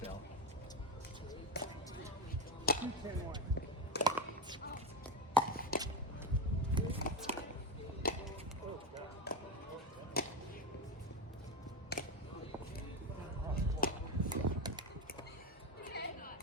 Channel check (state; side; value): normal; both; correlation 0.14